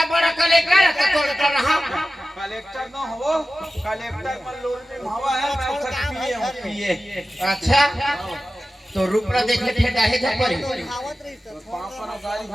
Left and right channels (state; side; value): normal; both; correlation 0.95